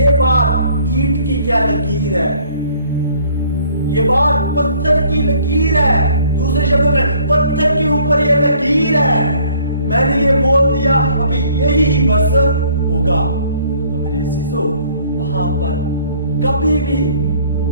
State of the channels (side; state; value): both; inverted; correlation -0.58